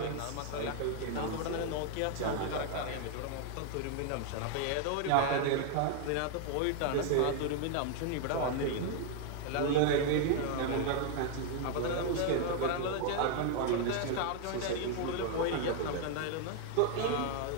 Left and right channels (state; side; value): different; both; correlation 0.00